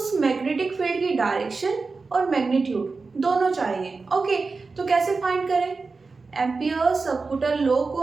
मैग्नेटिक फील्ड की डायरेक्शन और मैग्नीट्यूड दोनों चाहिए। ओके, तो कैसे फाइंड करें? एम्पियर सबकूटल लॉ को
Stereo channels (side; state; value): left; quieter; 4.2 dB